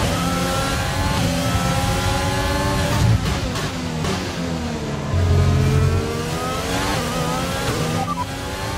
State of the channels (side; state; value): both; identical; correlation 1.00